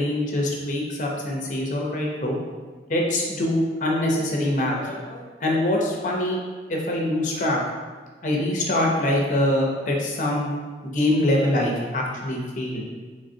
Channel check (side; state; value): both; normal; correlation 0.50